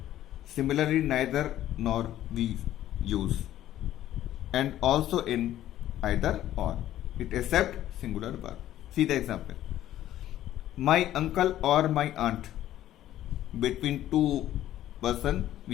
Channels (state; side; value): quieter; right; 12.9 dB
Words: Similarly, neither nor we use, and also in either or, it accept singular verb. See the example. My uncle or my aunt, between two person,